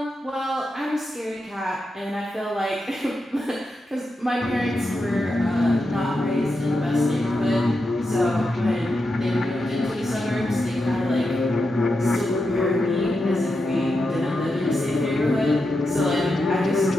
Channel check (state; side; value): normal; both; correlation 0.87